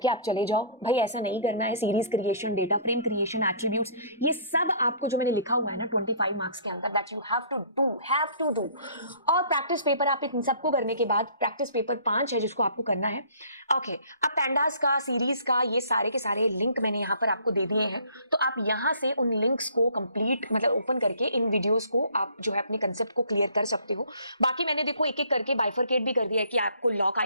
आप चले जाओ, भाई ऐसा नहीं करना है। Series creation, data frame creation, attributes, ये सब आपको जो मैंने लिखा हुआ है ना 25 मार्क्स के अंदर, that you have to do. और प्रैक्टिस पेपर आप इन सबको करने के बाद प्रैक्टिस पेपर 5 है जिसको आपको करना है। ओके, अब पैंडास का, सीरीज का, ये सारे के सारे लिंक मैंने यहां पर आपको दे दिए हैं, तो आप यहां से उन लिंक्स को कंप्लीट मतलब ओपन करके इन वीडियोस को आप जो है अपने कंसेप्ट को क्लियर कर सकते हो। बाकी मैंने देखो एक एक करके बाइफरकेट भी कर दिया है कि आपको लॉक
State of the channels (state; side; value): inverted; both; correlation -0.53